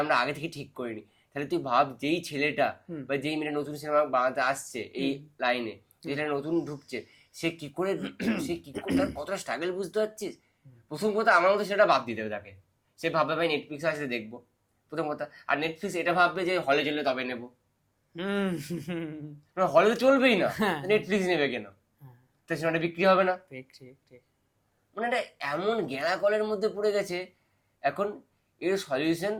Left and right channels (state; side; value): identical; both; correlation 1.00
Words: আমরা আগে থেকে ঠিক করিনি। তাহলে তুই ভাব, যেই ছেলেটা হুম। বা যেই মেয়েটা নতুন সিনেমা বানাতে আসছে এই লাইনে, যেটা নতুন ঢুকছে, সে কি করে তার কতটা স্ট্রাগল বুঝতে পারছিস? প্রথম কথা আমার মতো সেটা বাদ দিতে হবে তাকে, সে ভাববে ভাই নেটফ্লিক্সে আসলে দেখবো, প্রথম কথা। আর নেটফ্লিক্স এটা ভাববে যে হলে চললে তবে নেবো, হুম। হলে তো চলবেই না, হ্যাঁ। নেটফ্লিক্স নেবে কেন? তো সিনেমাটা বিক্রি হবে না। ঠিক ঠিক ঠিক। মানে এটা এমন গেঁড়া কলের মধ্যে পড়ে গেছে এখন। এর সলিউশন